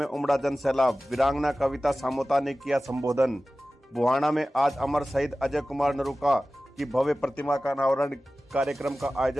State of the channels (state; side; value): normal; both; correlation 0.96